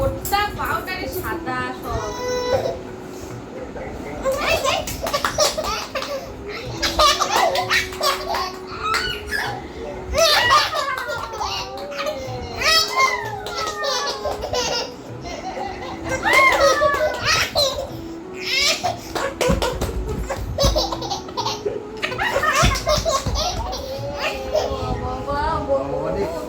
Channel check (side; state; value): both; identical; correlation 1.00